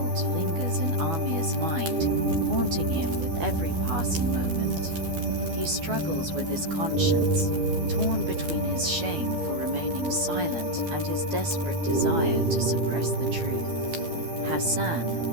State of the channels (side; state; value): left; late; 12 ms